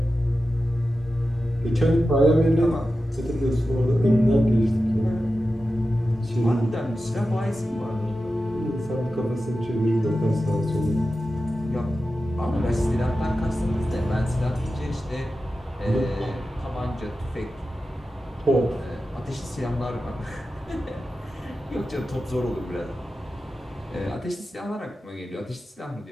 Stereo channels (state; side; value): normal; both; correlation 0.92